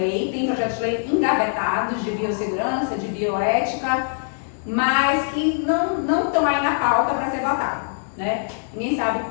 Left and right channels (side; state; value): right; silent; digital silence